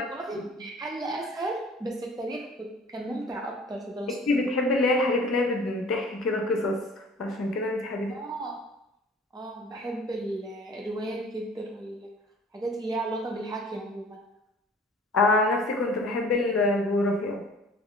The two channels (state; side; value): normal; both; correlation 0.48